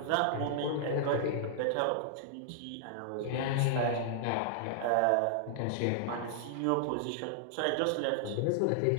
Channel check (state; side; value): different; both; correlation -0.01